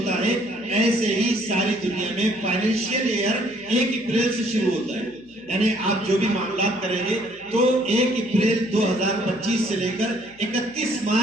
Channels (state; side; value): noise; left; hum, 29 dB below the sound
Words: ہے، ایسے ہی ساری دنیا میں فائنینشیل ایئر 1 اپریل سے شروع ہوتا ہے. یعنی آپ جو بھی معاملات کریں گے تو 1 اپریل 2025 سے لے کر 31